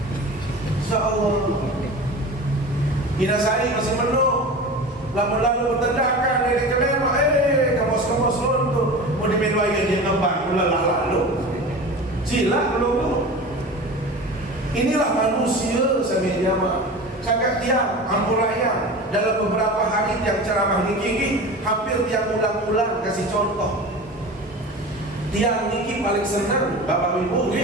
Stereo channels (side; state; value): both; normal; correlation 0.33